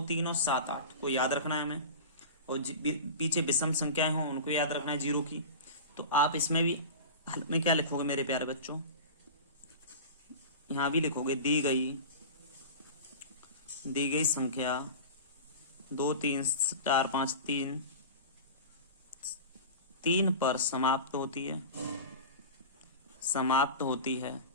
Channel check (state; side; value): inverted; both; correlation -0.31